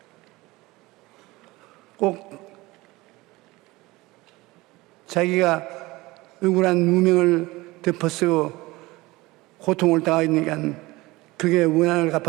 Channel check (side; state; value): left; quieter; 21.0 dB